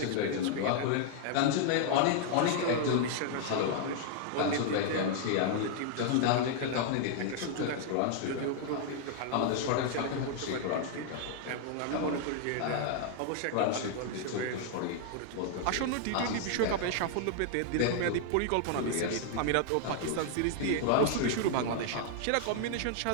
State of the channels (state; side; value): different; both; correlation 0.00